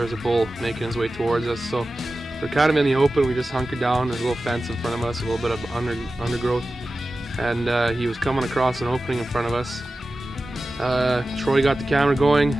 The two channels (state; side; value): normal; both; correlation 0.95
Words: was a bull making his way towards us. So we're kind of in the open. We just hunkered down. There's a little fence in front of us, a little bit of undergrowth. And he was coming across an opening in front of us. Troy got the camera going.